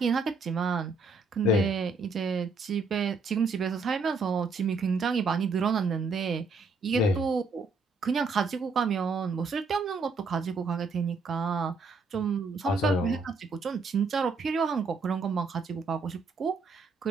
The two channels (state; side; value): quieter; left; 3.9 dB